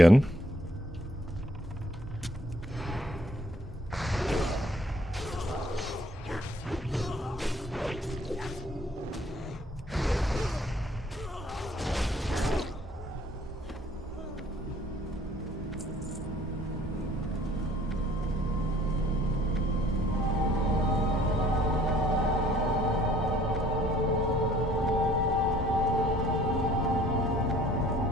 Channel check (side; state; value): both; normal; correlation 0.58